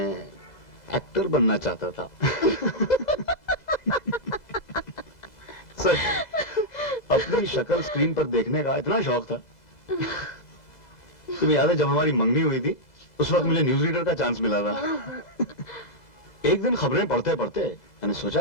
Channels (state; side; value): late; right; 2.0 ms